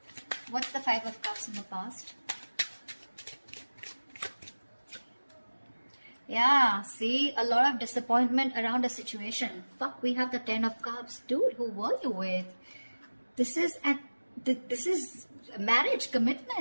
What's the Five of Cups in the past? Yeah, see, a lot of disappointment around a situation. Fuck, we have the 10 of Cups. Dude, who were you with? This is marriage,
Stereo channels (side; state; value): both; inverted; correlation -1.00